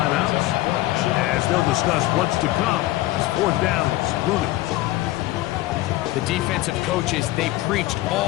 as they'll discuss what's to come. As fourth down is looming. The defensive coaches, they preached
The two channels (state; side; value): quieter; right; 17.4 dB